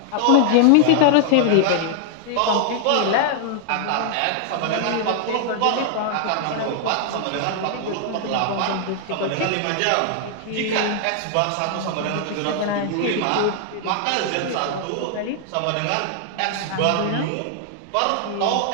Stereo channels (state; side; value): different; both; correlation 0.00